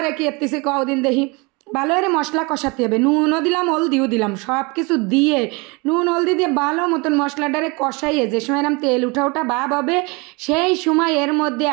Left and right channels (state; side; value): quieter; left; 27.9 dB